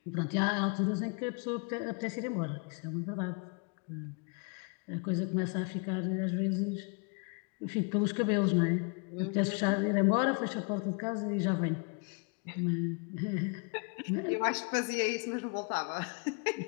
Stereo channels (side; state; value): right; quieter; 35.4 dB